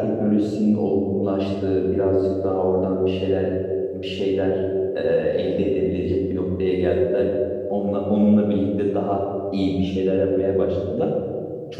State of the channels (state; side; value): identical; both; correlation 1.00